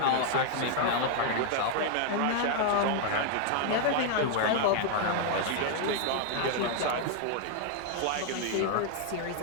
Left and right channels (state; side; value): different; both; correlation 0.00